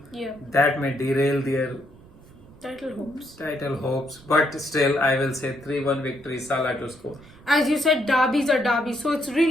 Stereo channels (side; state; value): right; noise; rumble, 24 dB below the sound